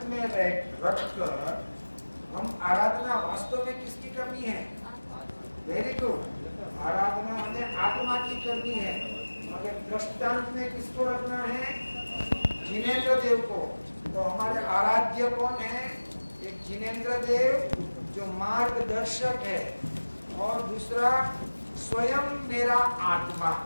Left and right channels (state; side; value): inverted; both; correlation -1.00